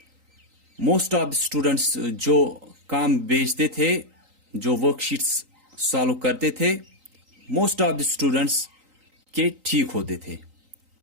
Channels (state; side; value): late; left; 3.9 ms